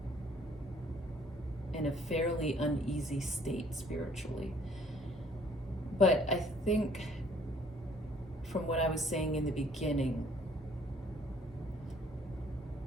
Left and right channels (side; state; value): both; normal; correlation 0.60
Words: in a fairly uneasy state spiritually. But I think from what I was saying in the beginning,